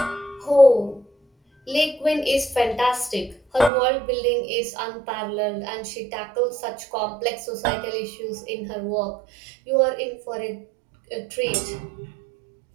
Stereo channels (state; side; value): drops out; left; at 3.7 s